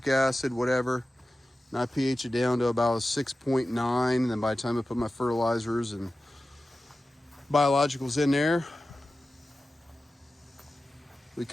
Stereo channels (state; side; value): normal; both; correlation 0.94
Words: acid, whatever. And I pH it down to about a 6.9, and then by the time I put my fertilizers and biologicals in there, we